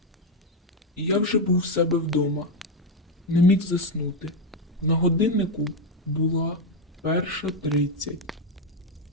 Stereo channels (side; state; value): both; normal; correlation 0.06